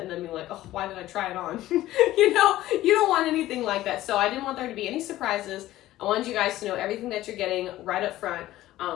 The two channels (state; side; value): quieter; right; 15.2 dB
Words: and then being like, oh, why did I try it on? You know, you don't want anything like that. So I didn't want there to be any surprises. I wanted you guys to know everything that you're getting right up front.